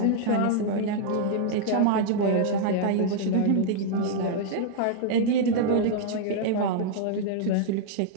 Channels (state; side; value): different; both; correlation -0.01